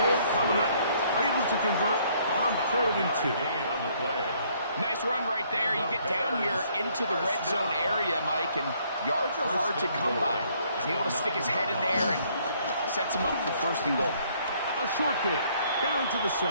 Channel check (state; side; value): inverted; both; correlation -0.65